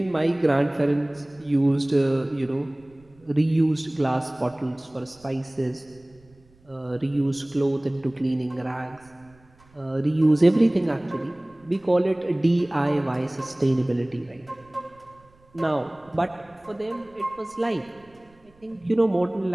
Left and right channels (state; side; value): noise; right; rumble, 29 dB below the sound